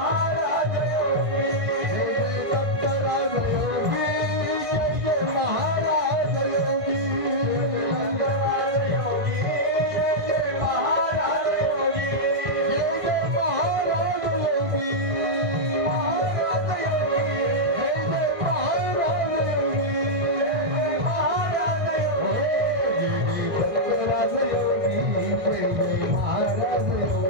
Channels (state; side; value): late; left; 1.6 ms